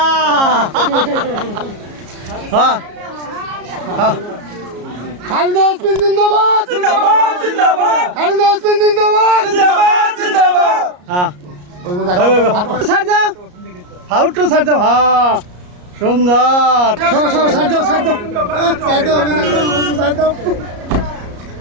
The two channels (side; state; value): left; late; 33 ms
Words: হ্যাঁ হ্যাঁ খালিদা ইয়াসমিন জিন্দাবাদ জিন্দাবাদ জিন্দাবাদ খালিদা ইয়াসমিন জিন্দাবাদ জিন্দাবাদ জিন্দাবাদ হ্যাঁ ছাড় দাও হাউটু ছাড় দাও হ্যাঁ সুন্দর সরো সরো ছাড় দাও ছাড় দাও ছাড় দাও ছাড় দাও